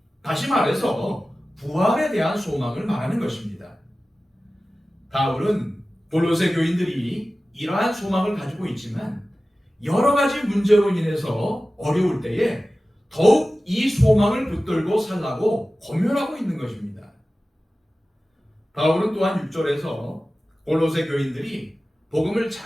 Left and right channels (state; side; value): normal; both; correlation 0.96